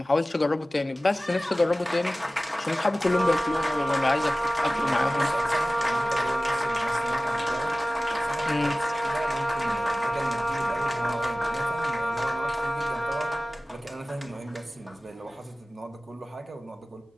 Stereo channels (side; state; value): both; normal; correlation 0.97